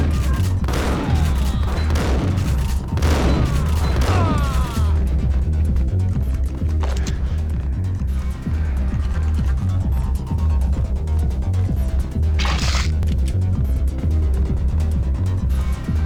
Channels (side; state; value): both; identical; correlation 1.00